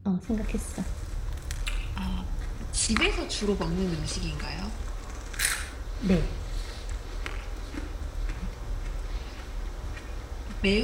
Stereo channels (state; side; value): identical; both; correlation 1.00